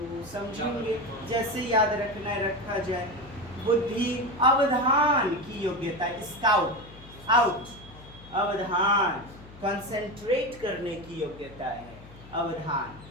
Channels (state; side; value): noise; left; hum, 19 dB below the sound